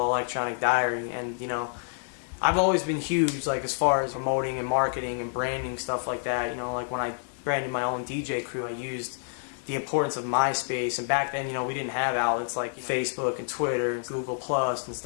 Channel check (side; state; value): right; silent; 59 dB below the other